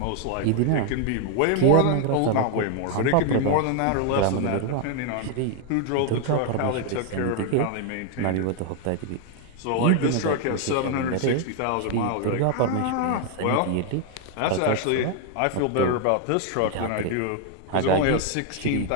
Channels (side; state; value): both; different; correlation 0.00